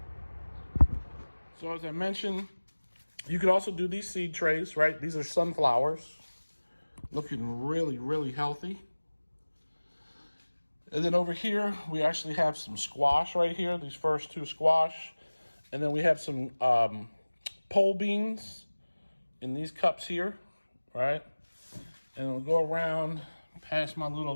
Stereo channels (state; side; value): inverted; both; correlation -1.00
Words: So as I mentioned, you could also do these seed trays, right? These are sunflowers, looking really healthy. And then over here, we actually have some squash right here, these first two squash. And then we have some pole beans in these cups here, right? And we'll go around past my little